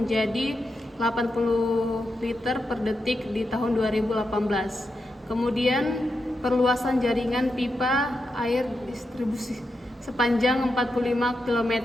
80 liter per detik di tahun 2018. Kemudian perluasan jaringan pipa air distribusi sepanjang 45 km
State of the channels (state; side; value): normal; both; correlation 0.86